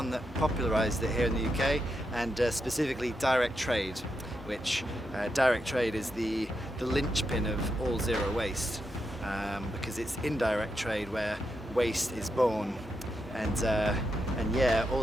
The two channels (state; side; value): normal; both; correlation 0.84